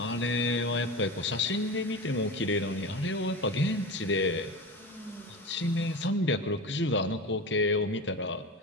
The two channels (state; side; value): normal; both; correlation 0.27